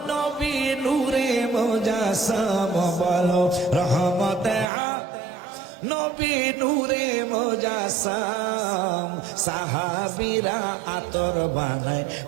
নবী নূরে মুজাসসাম বলো রহমতে নবী নূরে মুজাসসাম সাহাবীরা আতর বানায়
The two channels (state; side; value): drops out; left; at 4.7 s